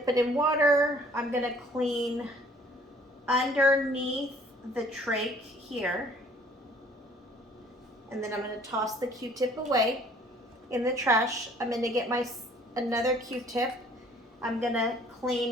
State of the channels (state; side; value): normal; both; correlation 0.56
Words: it in water. I'm going to clean underneath the trach here. And then I'm going to toss the Q-tip away in the trash. I'm going to get my another Q-tip. I'm going to